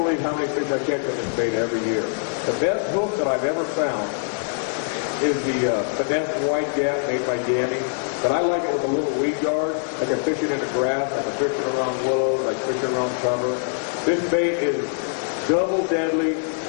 how many fish I catch with this bait every year. The best hook that I've ever found is the finesse white gap made by Danny. But I like it with a little weed guard. I can fish it in the grass, I can fish it around willows, I can fish it around cover. This bait is double deadly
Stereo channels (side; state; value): right; silent; 63 dB below the other